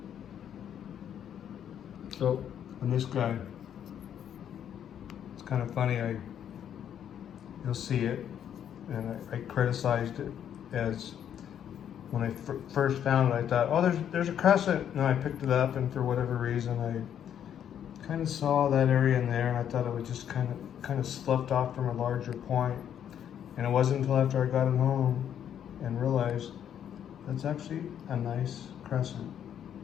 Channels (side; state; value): right; quieter; 9.4 dB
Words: So, on this guy, it's kind of funny, you'll see it, and I criticized it as, when I first found it, I thought, oh, there's a crescent, and I picked it up, and for whatever reason, I kind of saw that area in there, and I thought it would just kind of sloughed off from a larger point. And it wasn't until after I got it home and realized that's actually a nice crescent.